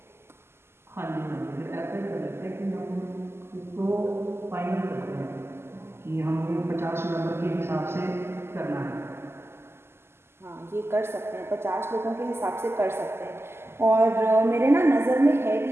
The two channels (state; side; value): late; left; 0.12 ms